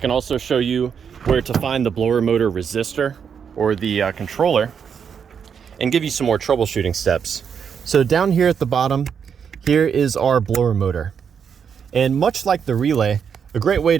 also show you where to find the blower motor resistor or the controller, and give you some more troubleshooting steps. So down here at the bottom, here is our blower motor. And much like the relay, a great way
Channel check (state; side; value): quieter; left; 7.1 dB